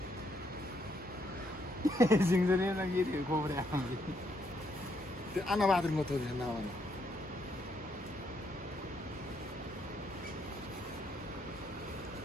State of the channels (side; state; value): both; normal; correlation 0.74